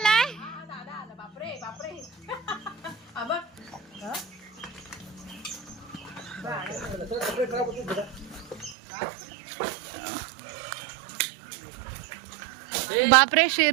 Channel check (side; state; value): left; drops out; at 8.8 s